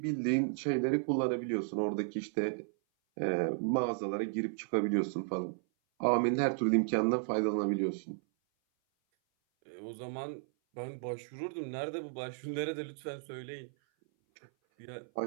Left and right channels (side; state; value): left; silent; 55 dB below the other